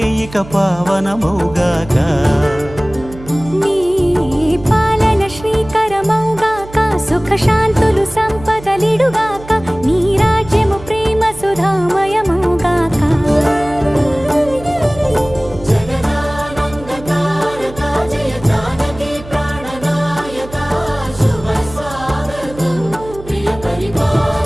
ఇక పావనమౌగాక నీ పాలన శ్రీకరమౌగాక సుఖ శాంతులు సంపదలిడుగా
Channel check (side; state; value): right; noise; hum, 16 dB below the sound